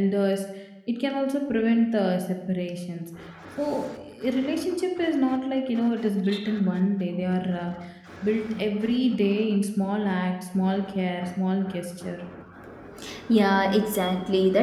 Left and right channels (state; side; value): identical; both; correlation 1.00